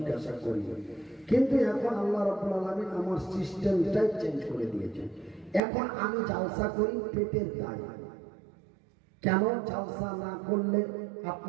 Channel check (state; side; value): drops out; left; at 5.6 s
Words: করি, কিন্তু এখন আল্লাহ রাব্বুল আলামিন আমার সিস্টেমটাই চেঞ্জ করে দিয়েছে। এখন আমি জালসা করি পেটের দায়। কেন জালসা না করলে